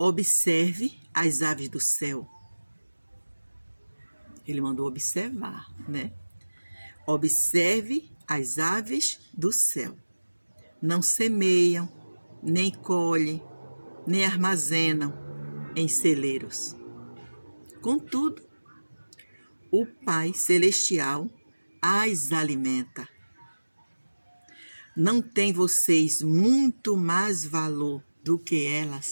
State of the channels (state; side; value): inverted; both; correlation -1.00